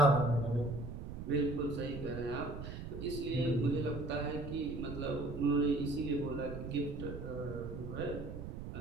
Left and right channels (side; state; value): right; noise; rumble, 8 dB below the sound